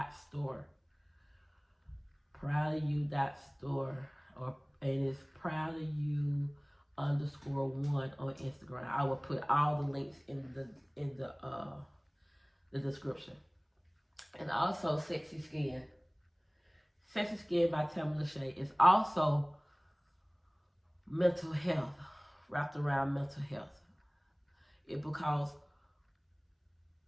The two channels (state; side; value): identical; both; correlation 1.00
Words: .store. Proud of You .store. And it's Proud of You _1 on Instagram. I will put all the links in the description. And also Sexy Skin. Sexy Skin by LaShae is also mental health, wrapped around mental health. Because